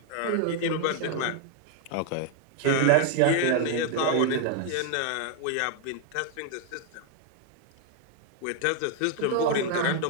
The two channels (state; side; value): different; both; correlation 0.00